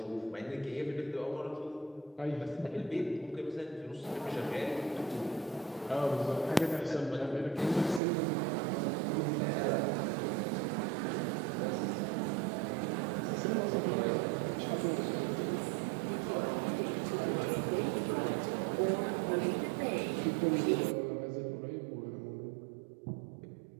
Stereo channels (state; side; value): drops out; left; at 8.0 s